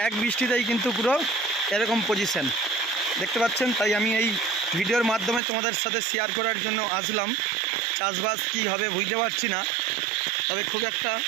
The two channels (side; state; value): left; drops out; at 5.4 s